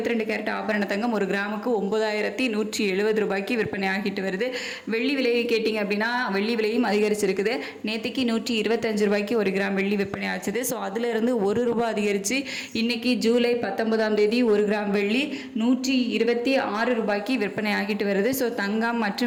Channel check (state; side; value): identical; both; correlation 1.00